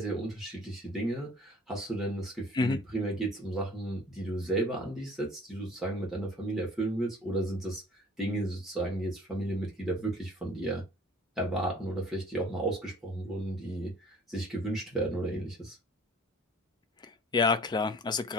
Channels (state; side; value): normal; both; correlation 0.50